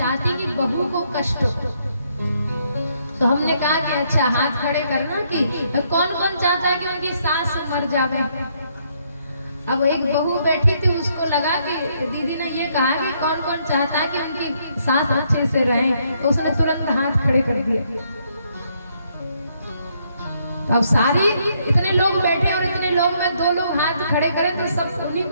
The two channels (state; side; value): inverted; both; correlation -0.72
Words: कि बहू को कष्ट हो। तो हमने कहा कि अच्छा हाथ खड़े करना कि कौन कौन चाहता है कि उनकी सास मर जावे। अब एक बहू बैठी थी, उसको लगा कि दीदी ने ये कहा कि कौन कौन चाहता है कि उनकी सास अच्छे से रहे, तो उसने तुरंत हाथ खड़े कर दिए। तो अब सारी इतने लोग बैठे और इतने लोग में 2 लोग हाथ खड़े करें तो सब उन्हीं